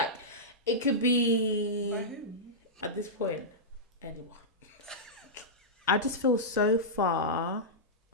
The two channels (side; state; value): both; normal; correlation -0.12